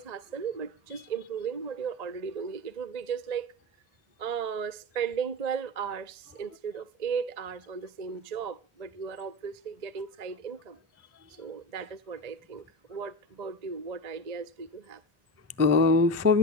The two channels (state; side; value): late; left; 1.8 ms